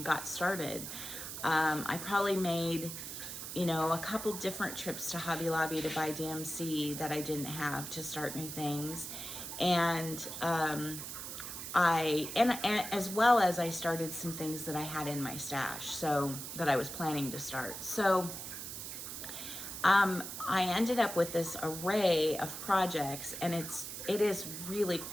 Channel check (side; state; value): right; noise; hiss, 8 dB below the sound